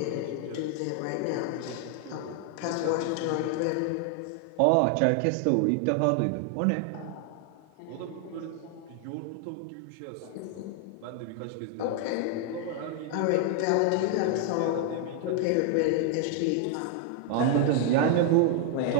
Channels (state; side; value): different; both; correlation 0.00